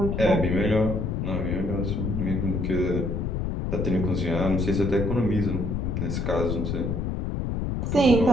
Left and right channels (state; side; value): noise; left; rumble, 1 dB below the sound